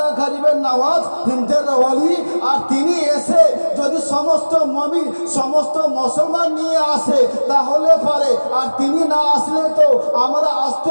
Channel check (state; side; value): inverted; both; correlation -1.00